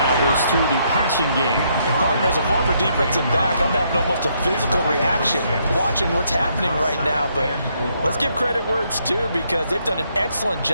was through the passing game. And partner, as a former defensive back, I'm having almost a physical reaction watching what's happening right now. But let's give credit where it's due, because they've done an excellent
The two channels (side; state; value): both; inverted; correlation -0.73